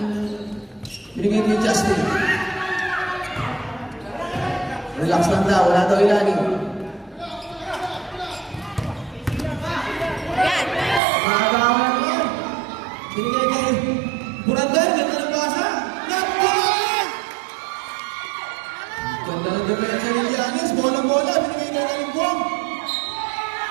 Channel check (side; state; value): left; drops out; at 11.0 s